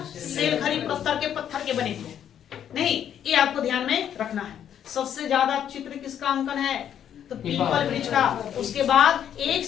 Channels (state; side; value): quieter; right; 9.6 dB